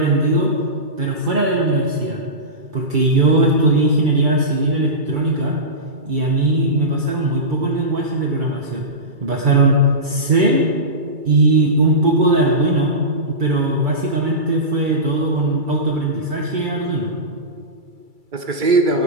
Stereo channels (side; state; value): left; late; 2.3 ms